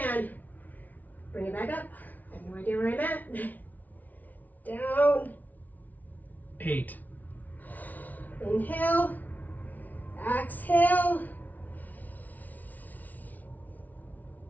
Bring it back up. I have no idea where I'm at. Down. 8. Inhale. Exhale.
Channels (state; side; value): late; right; 0.077 ms